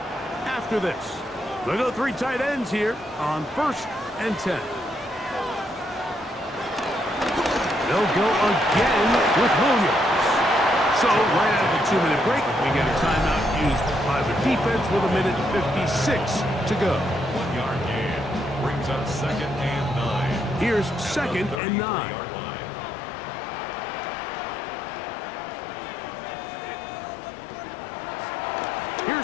after this. They'll go 3 tight ends here on first and 10. They'll go again with Williams. So right out of the 2-minute break, we get a timeout used by the defense with a minute and 56 to go. 1-yard gain brings up second and 9. Here's second and 9.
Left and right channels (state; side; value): drops out; right; at 21.6 s